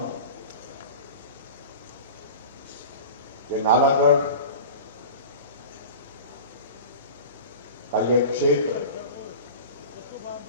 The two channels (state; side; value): inverted; both; correlation -0.35